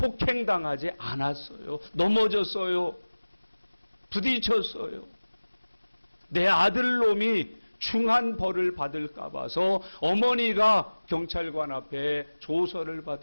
않았어요. 넘어졌어요. 부딪혔어요. 내 아들놈이 중한 벌을 받을까 봐서 어머니가 경찰관 앞에 조서를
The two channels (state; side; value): inverted; both; correlation -1.00